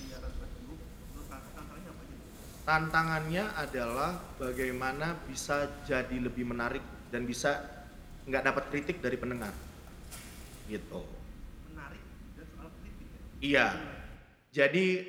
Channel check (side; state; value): both; identical; correlation 1.00